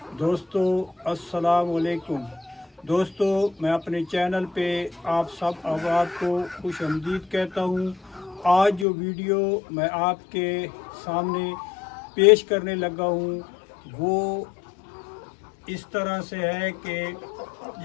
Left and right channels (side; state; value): right; drops out; at 8.8 s